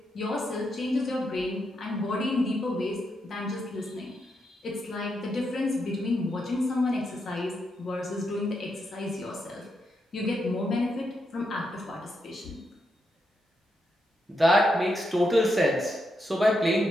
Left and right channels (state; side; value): normal; both; correlation 0.82